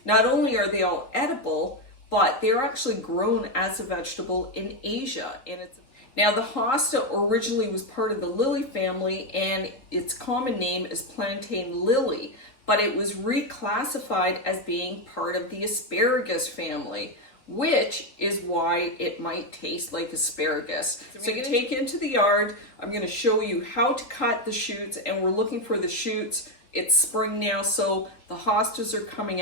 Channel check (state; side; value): late; right; 4.0 ms